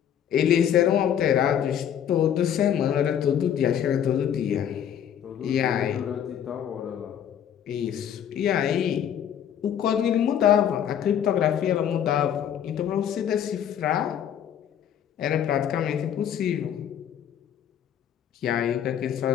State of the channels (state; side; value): quieter; right; 9.4 dB